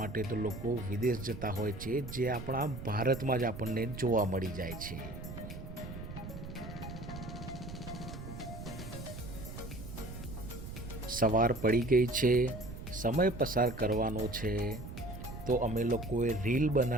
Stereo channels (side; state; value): right; noise; rumble, 10 dB below the sound